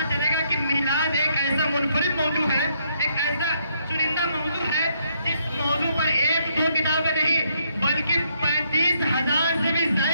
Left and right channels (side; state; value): both; inverted; correlation -0.73